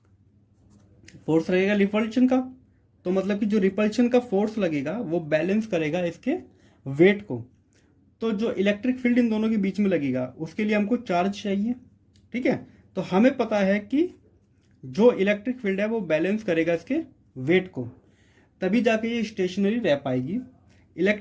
फोर्स लगेगा रिपल्शन का। तो मतलब कि जो रिपल्शन का फोर्स लगेगा वो बैलेंस करेगा इसके वेट को। तो जो इलेक्ट्रिक फील्ड इन दोनों के बीच में लगेगा उसके लिए हमको चार्ज चाहिए, ठीक है। तो हमें पता है कि जो इलेक्ट्रिक फील्ड है वो बैलेंस करेगा इसके वेट को, तभी जाके ये स्टेशनरी रह पाएगी।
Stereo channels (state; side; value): identical; both; correlation 1.00